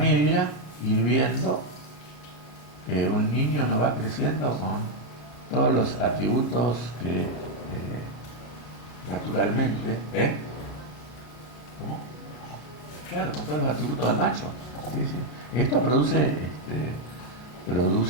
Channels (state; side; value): late; right; 33 ms